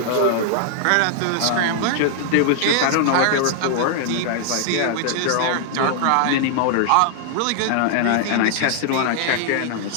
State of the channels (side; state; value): both; different; correlation -0.01